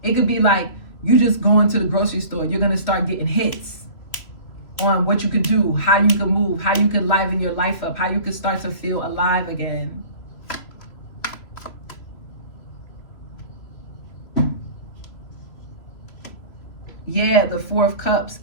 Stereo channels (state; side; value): late; right; 2.9 ms